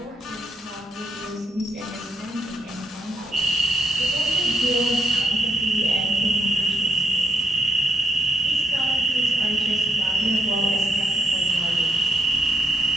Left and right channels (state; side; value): normal; both; correlation 0.75